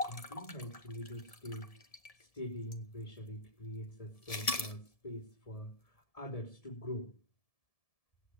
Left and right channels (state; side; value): late; right; 1.7 ms